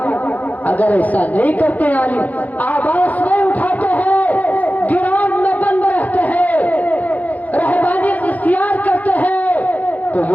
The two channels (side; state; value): right; late; 0.077 ms